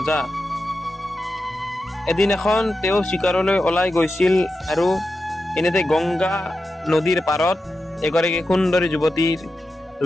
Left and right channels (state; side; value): normal; both; correlation 0.90